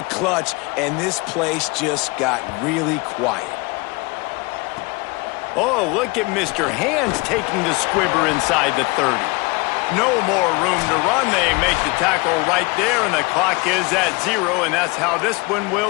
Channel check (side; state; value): right; quieter; 26.1 dB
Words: clutch, and this place just got really quiet. Oh, look at Mr. Hands taking the squibber inside the 30. No more room to run. They make the tackle right there, and the clock is at 0, and that's how this one